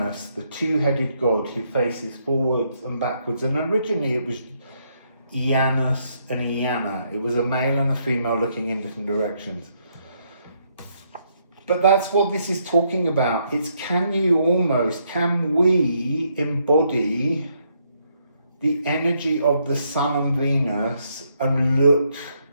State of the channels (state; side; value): inverted; both; correlation -0.74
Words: the two-headed god who faces forwards and backwards. And originally it was Janus and Iana. It was a male and a female looking in different directions. But that's what this is talking about. It's can we embody the energy of the Sun and Venus and look